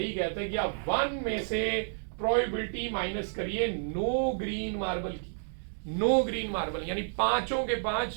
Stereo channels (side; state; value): left; silent; digital silence